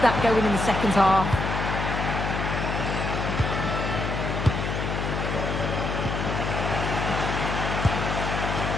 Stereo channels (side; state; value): left; noise; hum, 2 dB below the sound